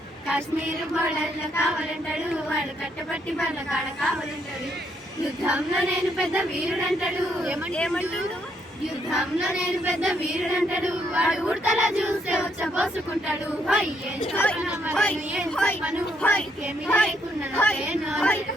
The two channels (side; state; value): both; normal; correlation 0.73